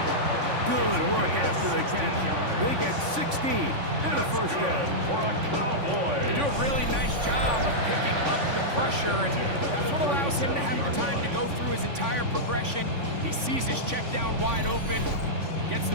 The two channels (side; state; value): left; late; 3.5 ms